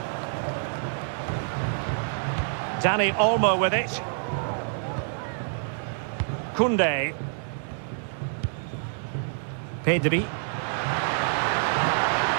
Dani Olmo with it. Koundé. Pedri.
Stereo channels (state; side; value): silent; left; 60 dB below the other